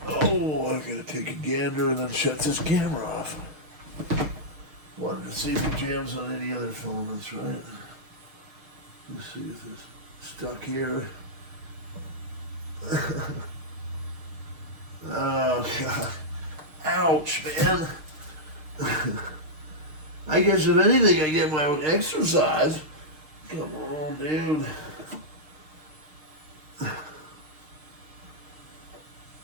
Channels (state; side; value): late; left; 6.5 ms